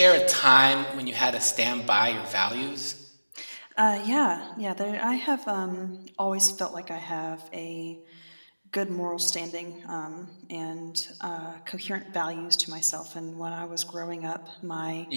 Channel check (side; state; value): both; inverted; correlation -1.00